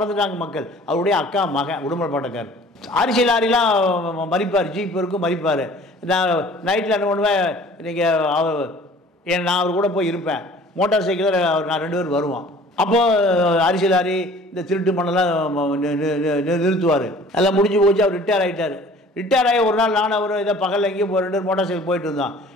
மக்கள். அவருடைய அக்கா மகன் உடுமலைப்பேட்டைக்கார். அரிசி லாரிலாம் மறிப்பார், ஜீப் இருக்கும் மறிப்பார். நான் நைட்டில் என்ன பண்ணுவேன், நீங்கள் நான் அவர் கூட போய் இருப்பேன். மோட்டார் சைக்கிளில் நான் 2 பேர் வருவோம். அப்போது அரிசி லாரி இந்த திருட்டு மண்ணெல்லாம் நிறுத்துவார். எல்லாம் முடிஞ்சு போச்சு. அவர் ரிட்டையர் ஆகிட்டார். ரிட்டையர் ஆகி ஒரு நாள் நான் அவர் இதை பகலில் எங்கேயும் 2 மோட்டார் சைக்கிள் போயிட்டு இருந்தான்.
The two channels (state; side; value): normal; both; correlation 0.49